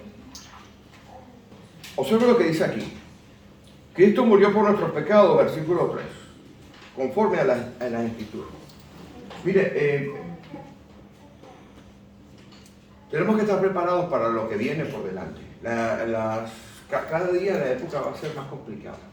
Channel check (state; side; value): identical; both; correlation 1.00